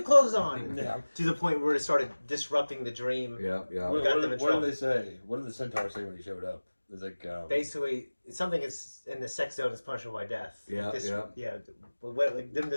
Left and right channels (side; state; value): both; inverted; correlation -1.00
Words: clothes on. Yeah. To the point where it started disrupting the dream. Yeah. What did they say? What did the centaur say when he showed up? It's like basically something is in the sex zone is punishable by death. Yeah. Them